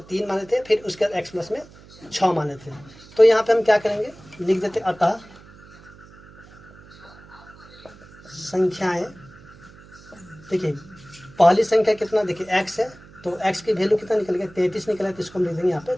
3 माने थे, फिर उसके x प्लस में 6 माने थे। तो यहाँ पे हम क्या करेंगे, लिख देते अतः संख्याएं। देखिए पहली संख्या कितना, देखिए x है, तो x की वैल्यू कितना निकल गया, 33 निकला है, तो इसको हम लिख देंगे यहाँ पे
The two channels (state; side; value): noise; right; hum, 22 dB below the sound